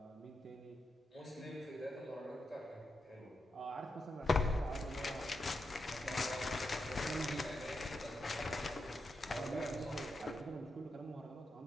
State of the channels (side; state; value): both; normal; correlation 0.86